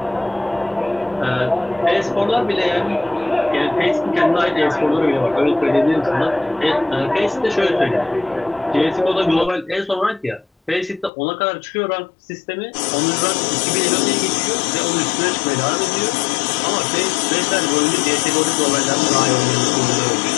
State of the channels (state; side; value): drops out; right; at 11.1 s